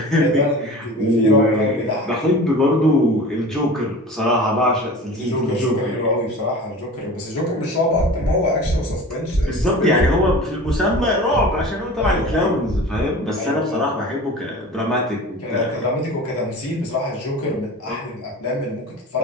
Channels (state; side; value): normal; both; correlation 0.37